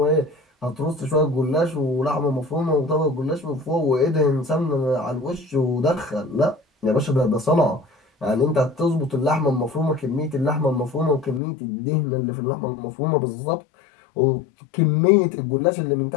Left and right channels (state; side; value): drops out; right; at 11.4 s